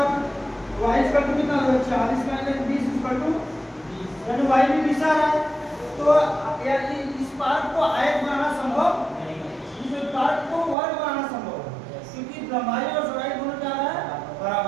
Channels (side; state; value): left; drops out; at 10.8 s